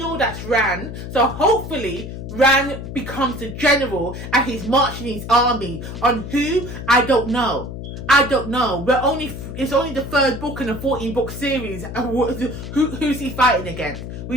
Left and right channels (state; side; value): noise; left; hum, 9 dB below the sound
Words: that's Ran. So hopefully, Ran becomes the general and he's marching his army on who? I don't know. I don't know. It's only the 3rd book in a 14-book series. Who's he fighting against?